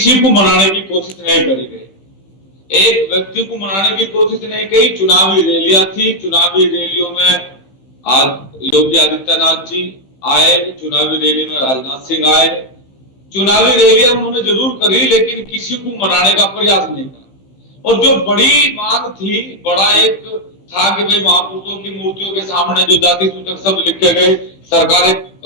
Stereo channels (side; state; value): right; late; 15 ms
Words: को मनाने की कोशिश नहीं करी गई, एक व्यक्ति को मनाने की कोशिश नहीं की। चुनावी रैलियां थी, चुनावी रैलियों में आज योगी आदित्यनाथ जी आए, चुनावी रैली में राजनाथ सिंह आए। चुनावी रैलियां उन्होंने जरूर करी, लेकिन किसी को मनाने का प्रयास नहीं करा। और जो बड़ी मांग थी, बड़ा एक था कि भाई महापुरुषों की मूर्तियों के सामने जो जाति सूचक शब्द लिखे गए, सरकार एक